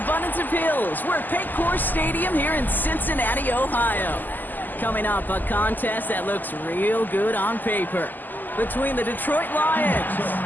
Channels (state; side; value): late; right; 0.087 ms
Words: of hills. We're at Paycor Stadium here in Cincinnati, Ohio. Coming up, a contest that looks real good on paper between the Detroit Lions